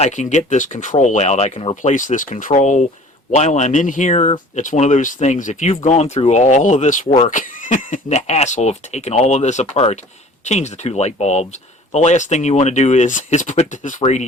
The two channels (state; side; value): normal; both; correlation 0.47